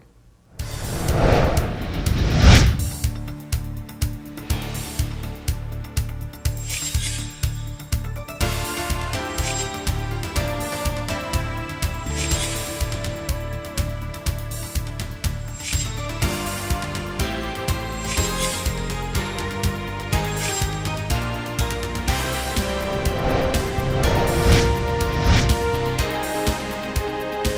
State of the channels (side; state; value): both; identical; correlation 1.00